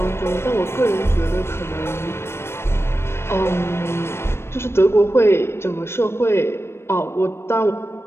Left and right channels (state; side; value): late; right; 0.12 ms